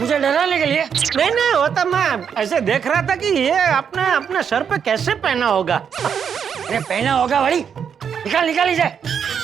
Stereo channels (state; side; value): quieter; left; 7.4 dB